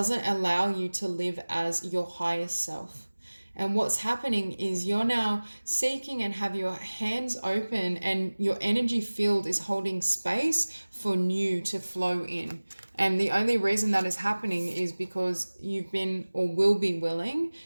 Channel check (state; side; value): inverted; both; correlation -1.00